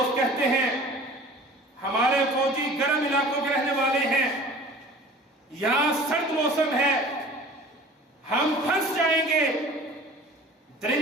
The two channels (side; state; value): both; normal; correlation 0.44